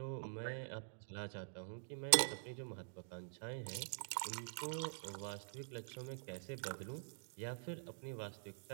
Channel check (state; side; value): silent; left; digital silence